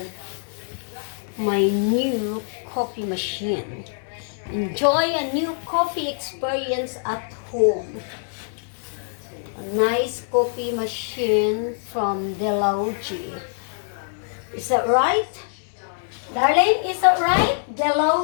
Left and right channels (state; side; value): silent; right; digital silence